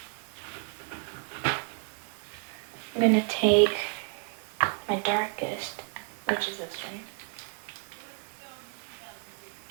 I'm gonna take my darkest, which is this one,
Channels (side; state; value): left; quieter; 38.8 dB